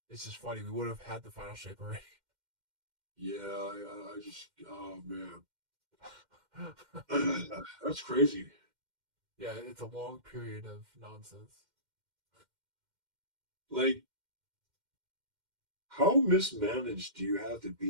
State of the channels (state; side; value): late; left; 2.1 ms